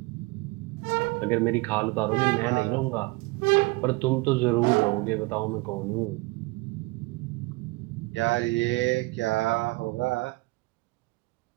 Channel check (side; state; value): left; quieter; 24.2 dB